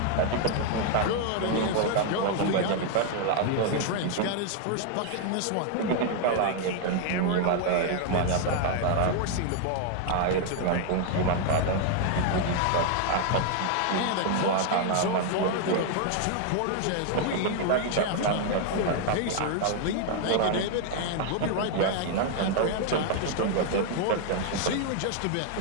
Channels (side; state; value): both; different; correlation 0.00